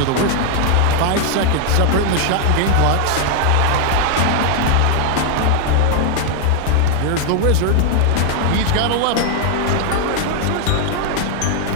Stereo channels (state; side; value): different; both; correlation 0.00